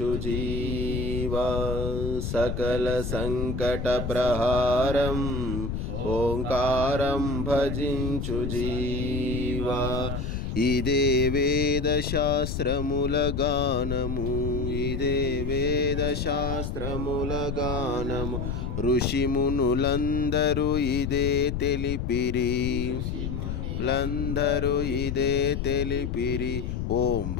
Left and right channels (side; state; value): left; noise; rumble, 3 dB below the sound